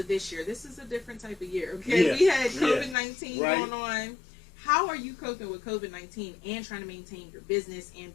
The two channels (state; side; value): drops out; right; at 3.0 s